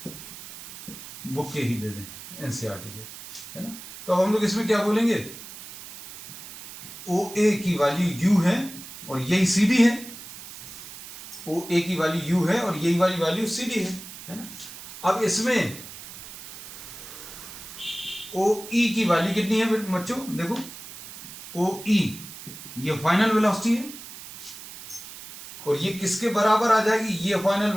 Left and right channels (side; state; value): right; noise; hiss, 13 dB below the sound